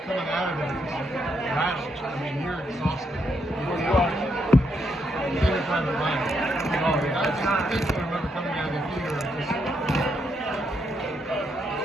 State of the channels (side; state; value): both; normal; correlation 0.78